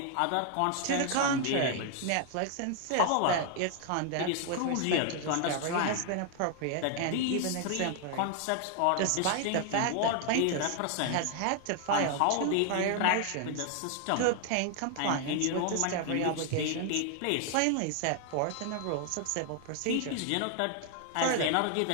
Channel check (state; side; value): different; both; correlation 0.00